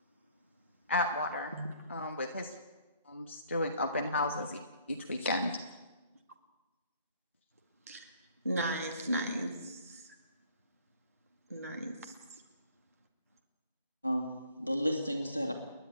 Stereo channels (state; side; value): inverted; both; correlation -0.59